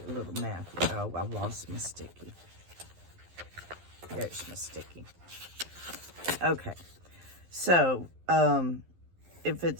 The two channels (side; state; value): left; late; 11 ms